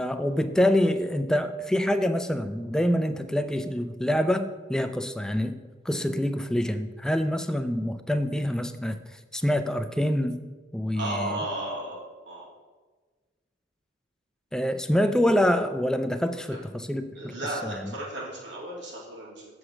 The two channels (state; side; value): normal; both; correlation 0.86